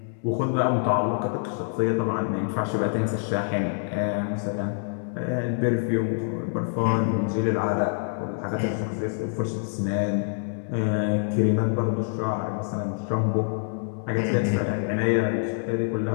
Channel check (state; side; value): silent; right; 61 dB below the other